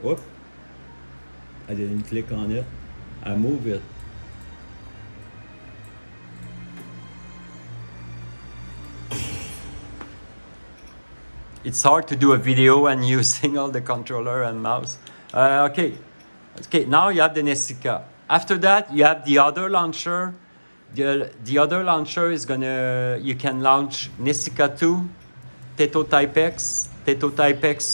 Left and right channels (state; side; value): inverted; both; correlation -1.00